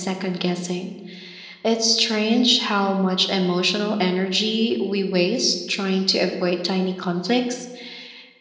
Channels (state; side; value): identical; both; correlation 1.00